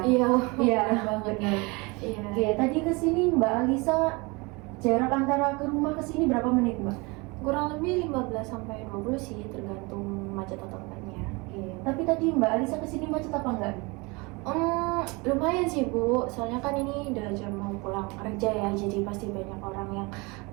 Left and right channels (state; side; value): quieter; left; 26.9 dB